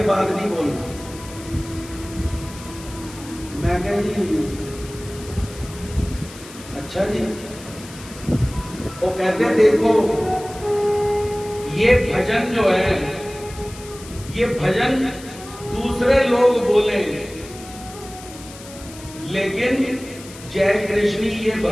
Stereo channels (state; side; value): noise; left; hiss, 17 dB below the sound